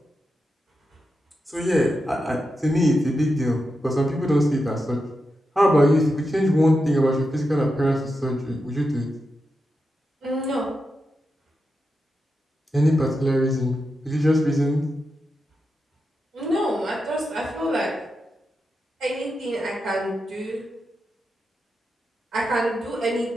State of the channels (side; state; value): both; normal; correlation 0.88